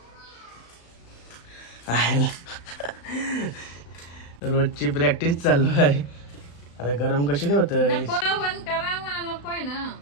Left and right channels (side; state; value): right; late; 35 ms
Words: रोजची प्रॅक्टिस चालू आहे. अरे गरम कशी होत नकोय ना